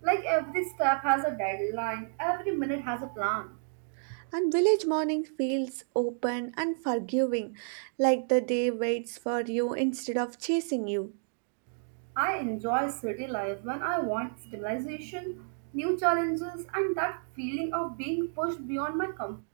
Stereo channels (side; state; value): left; silent; digital silence